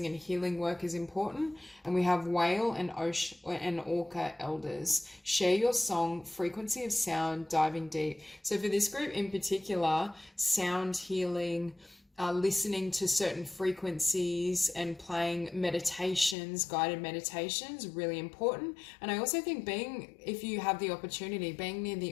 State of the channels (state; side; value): drops out; right; at 16.4 s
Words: and healing work is important. And we have whale and orca elders. Share your song, frequency of sound, diving deep. So for this group in particular, sound healing, listening to certain frequencies and playing meditations, guided meditations, really important. And I also think if you have the opportunity, being near